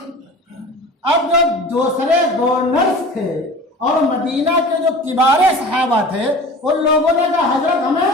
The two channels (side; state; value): both; normal; correlation 0.39